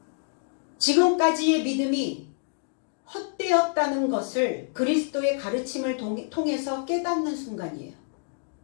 지금까지의 믿음이 헛되었다는 것을 그리스도의 가르침을 통해서 깨닫는 순간이에요.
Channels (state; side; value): silent; right; 60 dB below the other